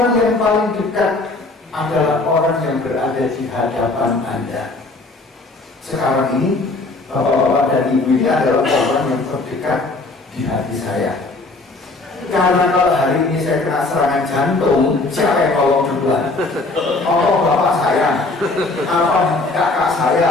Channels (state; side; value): quieter; right; 3.2 dB